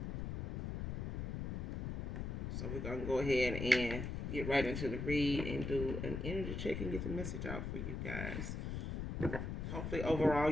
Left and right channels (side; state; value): left; noise; rumble, 3 dB below the sound